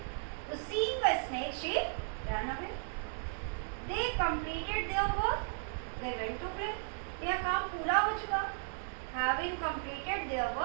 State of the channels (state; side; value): silent; left; digital silence